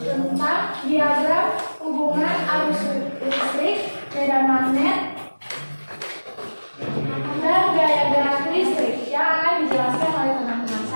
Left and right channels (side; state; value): both; inverted; correlation -1.00